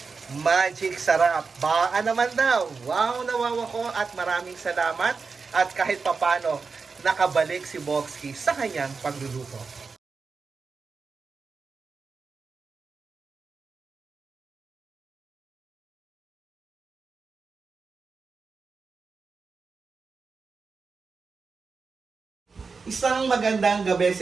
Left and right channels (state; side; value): quieter; left; 4.8 dB